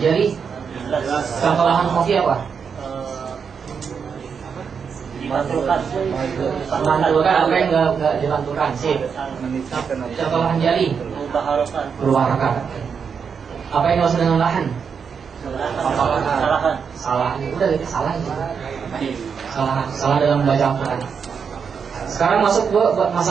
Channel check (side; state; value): left; quieter; 6.4 dB